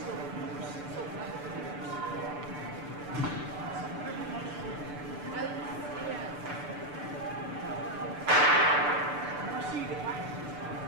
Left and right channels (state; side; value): late; left; 6.8 ms